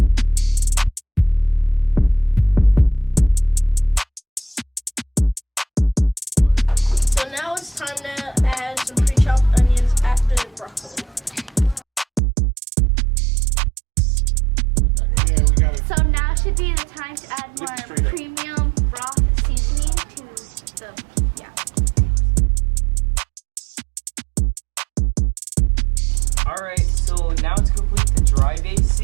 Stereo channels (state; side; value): drops out; left; at 12.2 s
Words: So now it's time to add some pre-chopped onions after the broccoli. Yeah, we got it. So now should be the time to add more premium broth seasoning to the, Alright, so now to complete the dry base